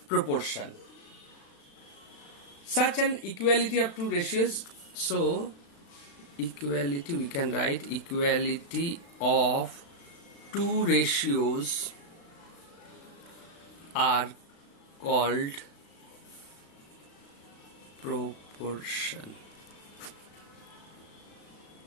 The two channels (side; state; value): right; late; 36 ms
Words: proportion. Such an equality of two ratios, so equality, we can write equality of two ratios are called proportion.